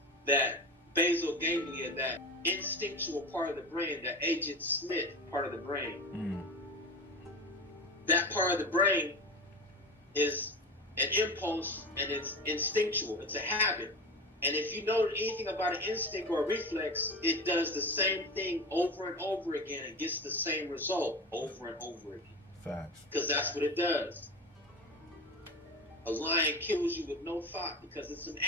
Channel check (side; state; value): both; normal; correlation 0.28